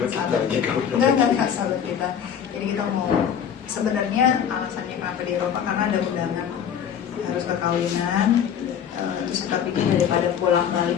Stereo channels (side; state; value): right; quieter; 8.4 dB